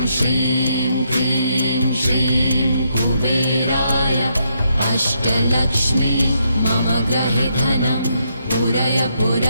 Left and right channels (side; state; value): both; inverted; correlation -0.77